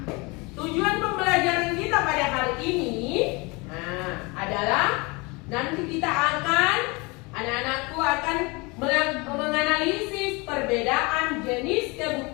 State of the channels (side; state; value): right; quieter; 26.9 dB